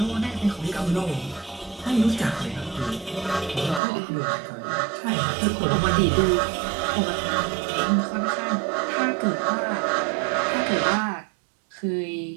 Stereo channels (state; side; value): drops out; left; at 3.8 s